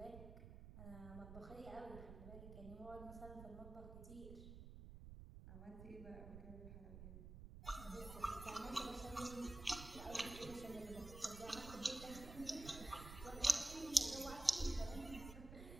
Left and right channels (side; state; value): right; noise; rumble, 11 dB below the sound